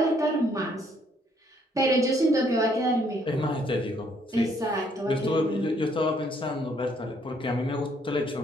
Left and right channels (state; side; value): normal; both; correlation 0.67